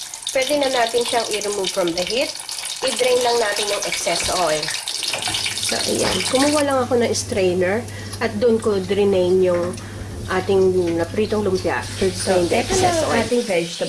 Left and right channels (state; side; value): identical; both; correlation 1.00